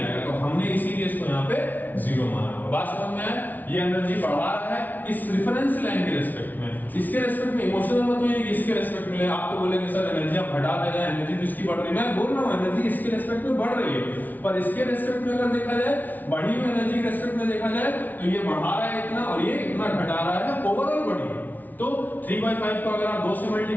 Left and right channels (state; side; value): late; right; 0.081 ms